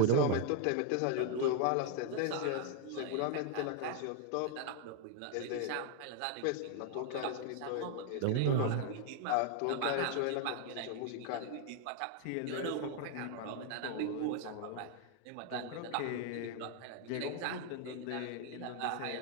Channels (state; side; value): different; both; correlation 0.00